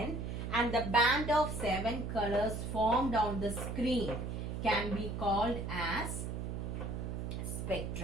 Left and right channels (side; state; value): right; noise; hum, 4 dB below the sound